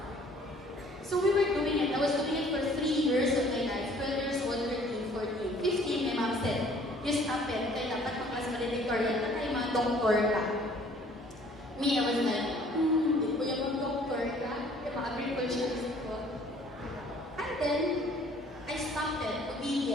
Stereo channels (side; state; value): both; normal; correlation 0.56